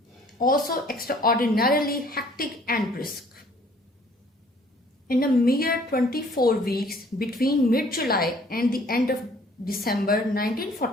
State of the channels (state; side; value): normal; both; correlation 0.57